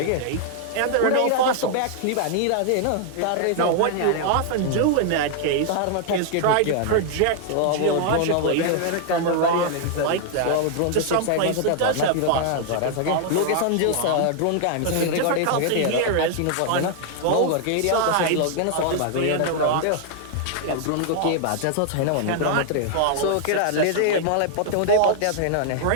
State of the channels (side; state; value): both; different; correlation 0.00